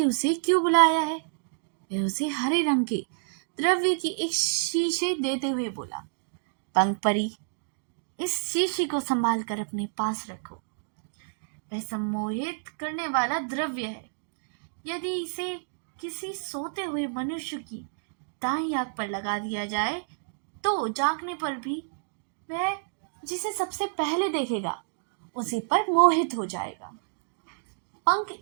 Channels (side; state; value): left; silent; digital silence